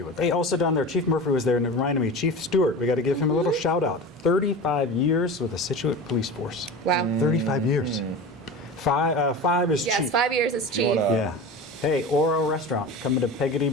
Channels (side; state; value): both; normal; correlation 0.31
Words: with it. Hey, also down there, Chief Murphy was there, and it reminded me, Chief Stewart, we got to give him a little shout out. 35 years with the Scituate Police Force. Wow. 35 years. Five is Yes, cheap. 5 years is cheap. Yeah. Hey, Oro Restaurant coming to Peggotty